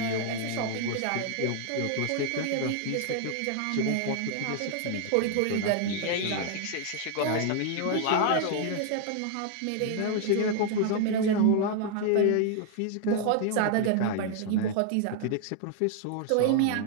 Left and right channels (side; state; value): both; different; correlation 0.00